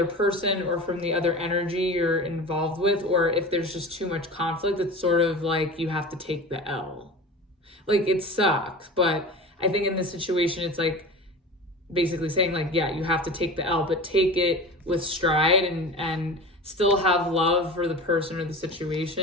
person or from the other energy you're involved with, or if there's just too much conflict, it's sort of like you have to take the L. Like, it sucks, but I think in this situation, it's like basically saying like, yeah, you have to take the L, but take it with stride, and still have love for the person or the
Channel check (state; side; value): normal; both; correlation 0.33